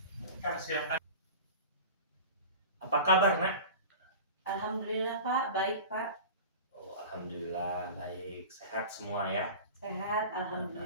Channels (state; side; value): inverted; both; correlation -0.35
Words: Silakan. Apa kabar, Nak? Alhamdulillah Pak, baik Pak. Oh, alhamdulillah baik. Sehat semua ya. Sehat,